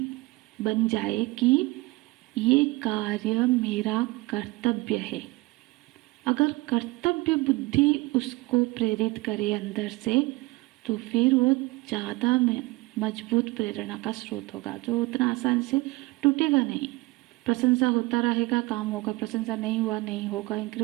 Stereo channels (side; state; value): left; quieter; 22.0 dB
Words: बन जाए कि ये कार्य मेरा कर्तव्य है, अगर कर्तव्य बुद्धि उसको प्रेरित करे अंदर से, तो फिर वो ज़्यादा मजबूत प्रेरणा का स्रोत होगा, जो उतना आसान से टूटेगा नहीं। प्रशंसा होता रहेगा, काम होगा, प्रशंसा नहीं हुआ नहीं होगा,